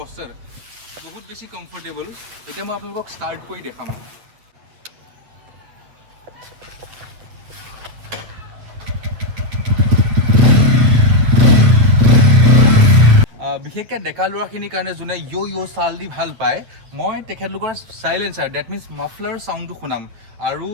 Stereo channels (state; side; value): late; left; 8.6 ms